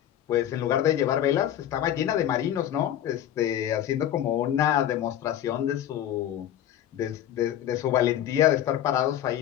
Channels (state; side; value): quieter; right; 11.3 dB